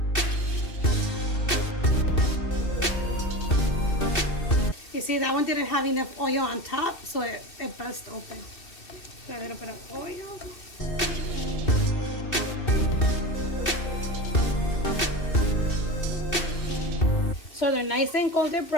You see, that one didn't have enough oil on top, so it burst open. A little bit of oil. So they're nice and golden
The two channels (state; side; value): late; right; 2.7 ms